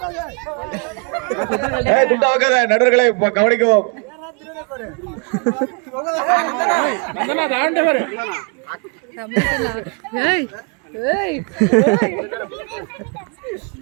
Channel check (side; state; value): left; quieter; 35.2 dB